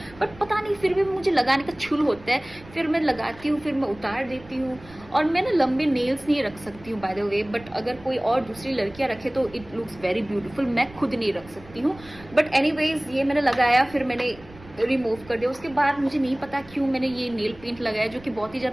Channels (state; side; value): noise; right; rumble, 21 dB below the sound